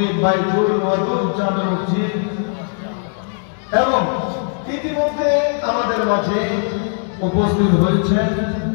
বাইতুল ওয়াদুদ জামে মসজিদ, এবং ইতিমধ্যে আমাদের মাঝে উপস্থিত হয়েছেন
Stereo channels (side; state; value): right; silent; 56 dB below the other